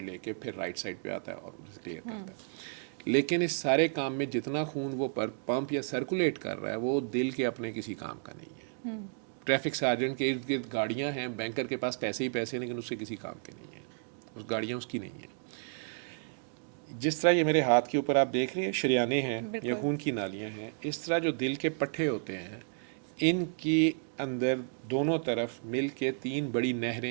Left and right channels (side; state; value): left; silent; digital silence